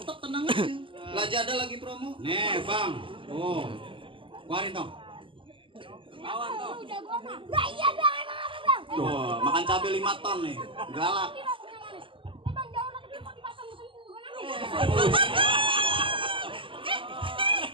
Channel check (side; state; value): left; late; 0.25 ms